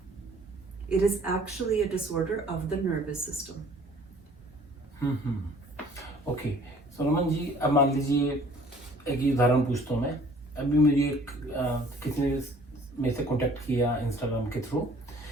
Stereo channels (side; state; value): both; normal; correlation 0.54